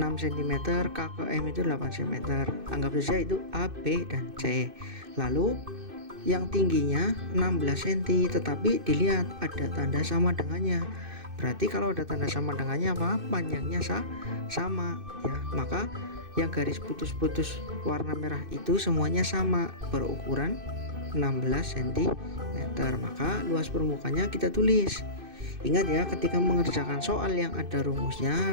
K ke M itu 8 cm. Anggap saja itu A, B, dan C. Lalu yang tingginya 16 cm, tetapi dilihat ada tanda sama dengannya. Berarti kalau ada tanda sama dengannya apa? Panjangnya sama ya. Maka yang garis putus-putus warna merah itu semuanya sama, berukuran 16 cm. Maka luas permukaannya kita tulis. Ingat ya, ketika mengerjakan soal yang ada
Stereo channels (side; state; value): left; late; 2.6 ms